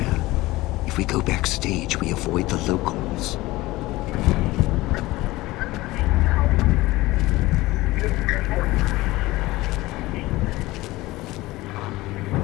If we go backstage, we avoid the locals.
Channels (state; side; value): quieter; right; 19.2 dB